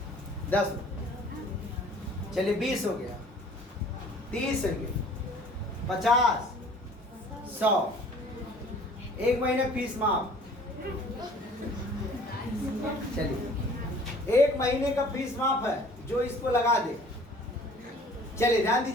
10, चलिए 20 हो गया, 30 हो गया, 50, 100। एक महीने फीस माफ। चलिए 1 महीने का फीस माफ है जो इसको लगा दे। चलिए ध्यान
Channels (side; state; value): both; normal; correlation 0.51